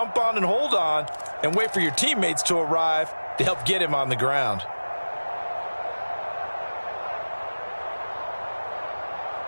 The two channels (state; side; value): inverted; both; correlation -1.00